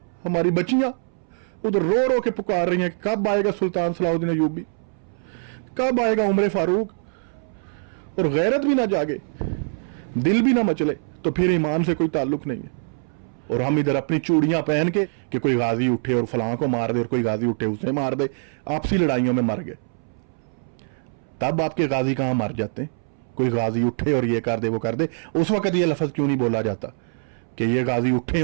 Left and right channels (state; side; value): silent; left; 63 dB below the other